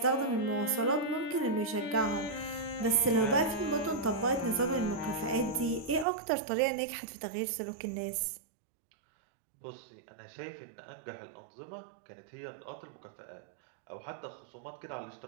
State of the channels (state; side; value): drops out; left; at 6.1 s